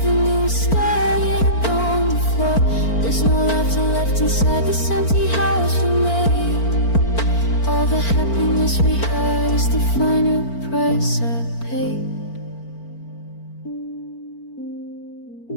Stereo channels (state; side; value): late; right; 4.4 ms